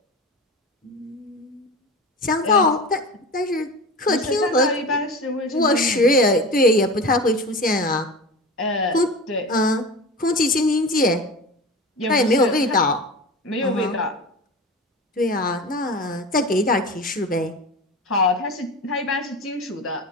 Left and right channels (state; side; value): normal; both; correlation 0.31